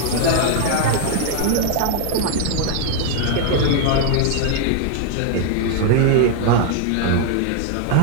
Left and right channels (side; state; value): both; different; correlation 0.00